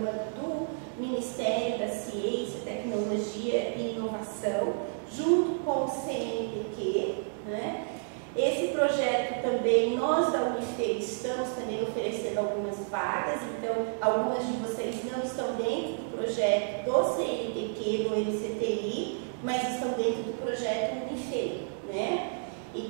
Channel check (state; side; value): silent; left; digital silence